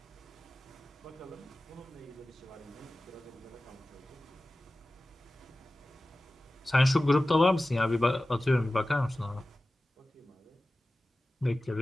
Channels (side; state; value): both; normal; correlation 0.96